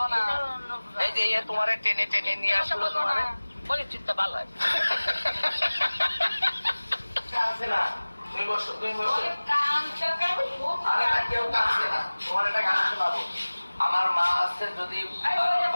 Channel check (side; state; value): both; inverted; correlation -1.00